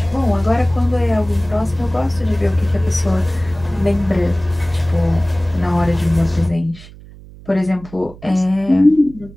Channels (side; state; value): right; noise; hum, 19 dB below the sound